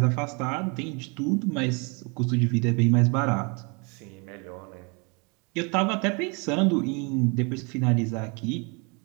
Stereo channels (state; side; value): quieter; left; 32.1 dB